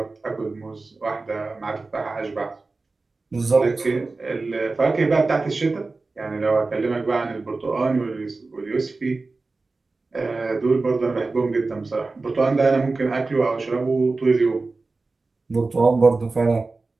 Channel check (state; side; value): quieter; left; 3.7 dB